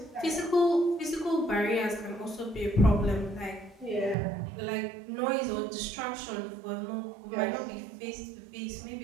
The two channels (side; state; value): left; drops out; at 4.2 s